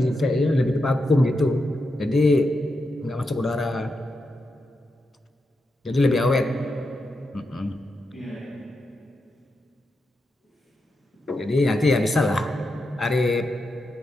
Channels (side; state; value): both; normal; correlation 0.86